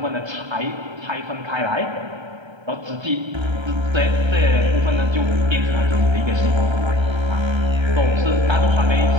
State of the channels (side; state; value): left; late; 1.3 ms